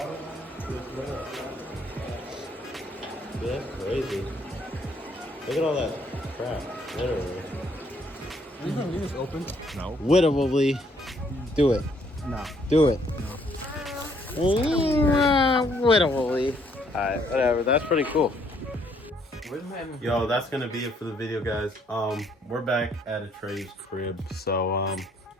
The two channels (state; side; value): normal; both; correlation 0.67